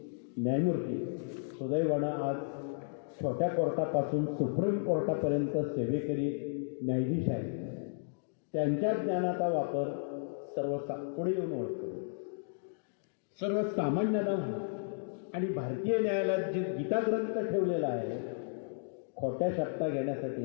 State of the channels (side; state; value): right; silent; digital silence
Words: न्यायमूर्ती, सुदैवानं आज छोट्या कोर्टापासून सुप्रीम कोर्टापर्यंत सेवेकरी न्यायाधीश आहेत. त्यांच्या ज्ञानाचा वापर पुढे येऊन ओळखतो. सर्वसामान्यांना आणि भारतीय न्यायालयात जे गीताग्रंथ ठेवलेला आहे खोट्या शब्दा घेण्यासाठी